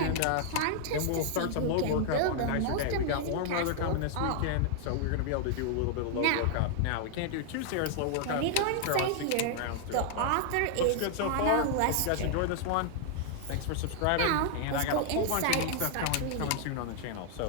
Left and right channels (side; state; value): both; different; correlation 0.00